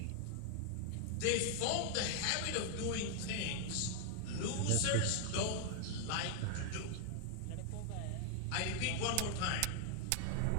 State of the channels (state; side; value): different; both; correlation 0.00